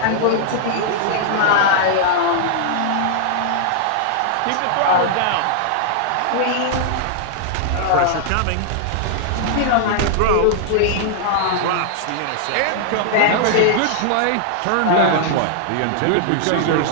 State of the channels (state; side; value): different; both; correlation -0.01